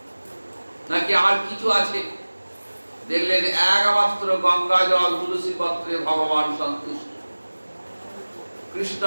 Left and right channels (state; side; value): inverted; both; correlation -1.00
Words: নাকি আর কিছু আছে? দেখলেন একমাত্র গঙ্গা জল তুলসী পত্রে ভগবান সন্তুষ্ট।